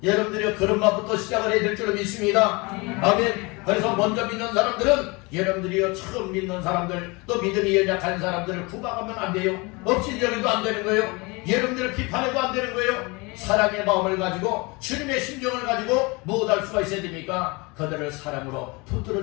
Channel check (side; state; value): right; quieter; 26.6 dB